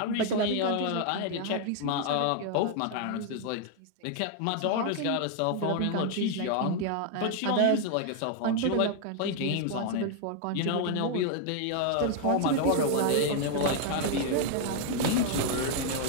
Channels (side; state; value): both; different; correlation 0.00